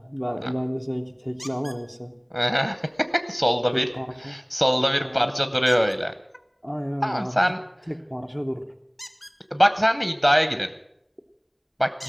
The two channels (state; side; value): identical; both; correlation 1.00